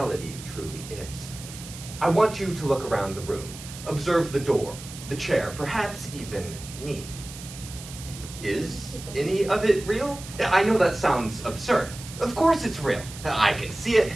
truly is. I want you to look around the room, observe the door, the chair, perhaps even me. Is any of it real? I know that sounds absurd. Of course it's real. I can see it,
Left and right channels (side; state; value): right; noise; hiss, 14 dB below the sound